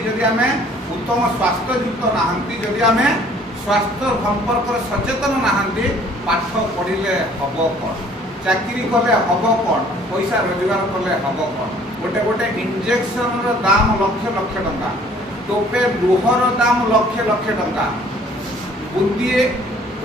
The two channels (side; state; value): both; normal; correlation 0.56